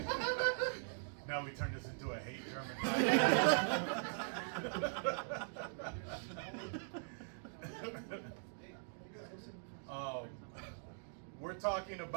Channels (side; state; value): left; silent; digital silence